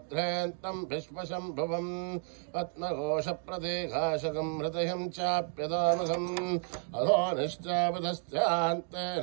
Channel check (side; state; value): left; silent; 56 dB below the other